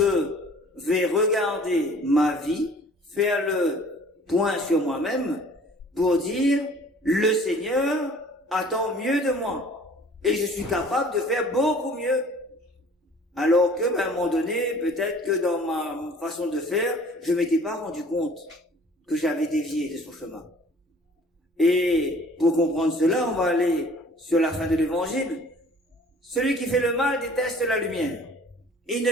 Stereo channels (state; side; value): normal; both; correlation 0.51